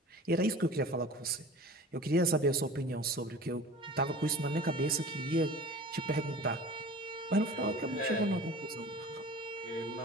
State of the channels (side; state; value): both; normal; correlation 0.40